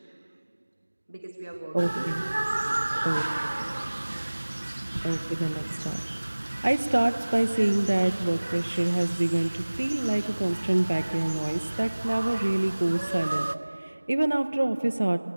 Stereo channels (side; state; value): both; inverted; correlation -1.00